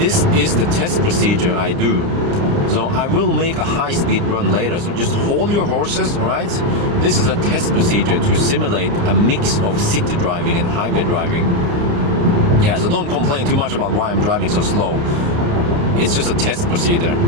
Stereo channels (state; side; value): late; left; 29 ms